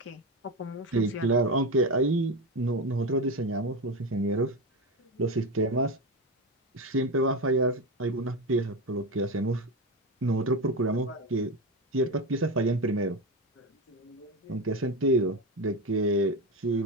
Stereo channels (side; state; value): both; normal; correlation 0.17